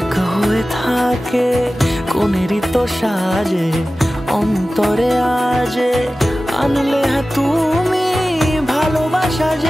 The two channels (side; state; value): both; normal; correlation 0.96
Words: হয়ে থাকে। কোনেরই তো সাজে অন্তরে আজে, আনলে হ্যাঁ তুমি ভালোবাসা